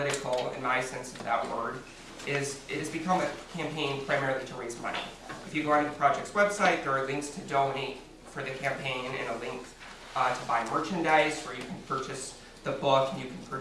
in my sense of that word, is it has become a campaign primarily to raise money. If you go onto the project's website, there are links to donate for the campaign and a link to buy merchandise where you can purchase the book and you can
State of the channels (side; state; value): both; identical; correlation 1.00